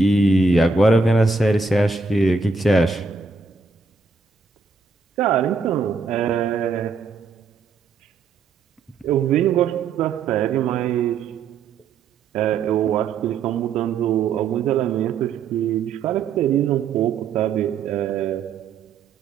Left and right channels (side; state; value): left; quieter; 4.6 dB